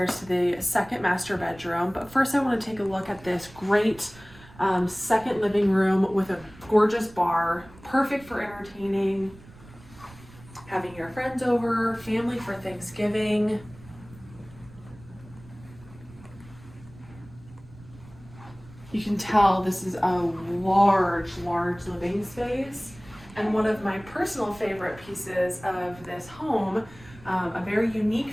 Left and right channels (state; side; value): noise; right; rumble, 21 dB below the sound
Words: to the second master bedroom, but first I want to take a look at this great second living room with a gorgeous bar, perfect for entertaining, having your friends over, family for Thanksgiving. You can tell this is a large living space. And one of my personal favorite pieces of this home, a very unique